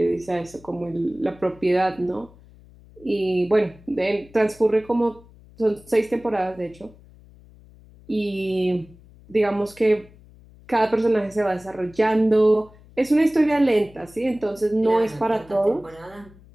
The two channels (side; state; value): left; noise; hum, 24 dB below the sound